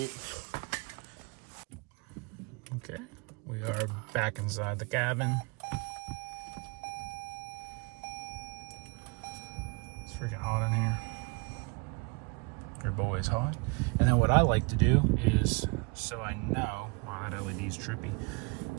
Okay, we are back inside the cabin. It's freaking hot in here. Your boy is hot. And then what I like to do is, so I know, wow, that LED's trippy,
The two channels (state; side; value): quieter; left; 30.0 dB